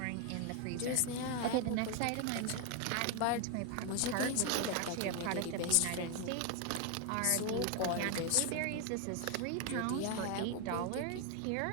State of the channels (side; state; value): both; different; correlation 0.01